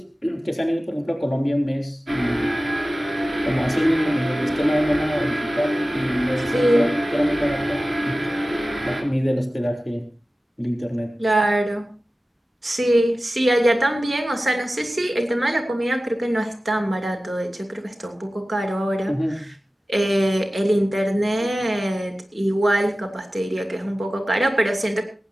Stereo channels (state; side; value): normal; both; correlation 0.96